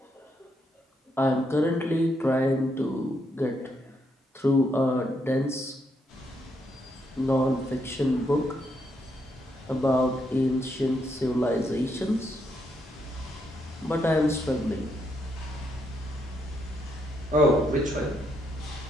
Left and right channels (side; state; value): both; normal; correlation 0.77